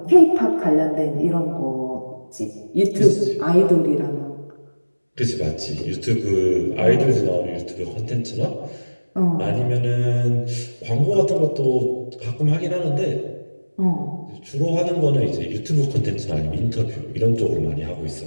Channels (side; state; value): both; inverted; correlation -1.00